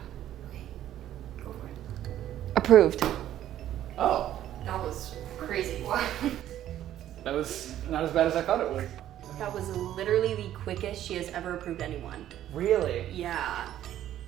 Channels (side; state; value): left; quieter; 12.1 dB